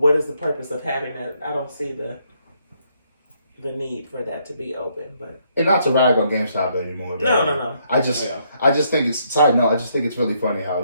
is the purpose of having that? I don't see the need for that to be open. But And not to rag on GameStop anymore. but no. I just Oh, I just think it's side note. I just think it's really funny how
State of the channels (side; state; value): both; inverted; correlation -0.73